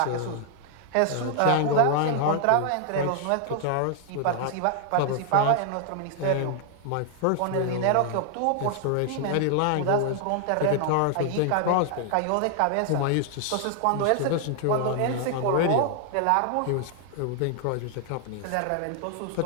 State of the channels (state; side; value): different; both; correlation 0.00